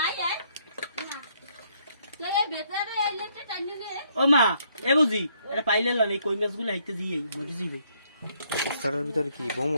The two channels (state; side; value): inverted; both; correlation -0.70